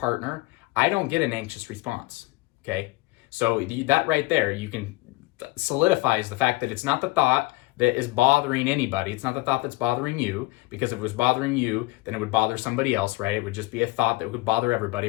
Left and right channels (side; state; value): right; quieter; 21.4 dB